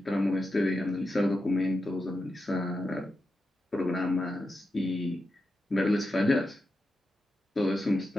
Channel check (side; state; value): both; normal; correlation 0.89